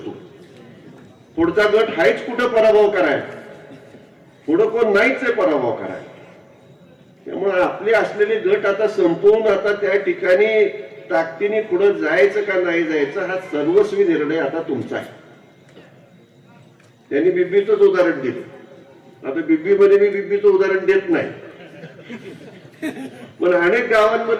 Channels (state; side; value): identical; both; correlation 1.00